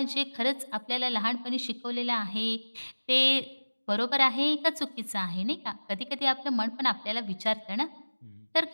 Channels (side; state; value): both; inverted; correlation -1.00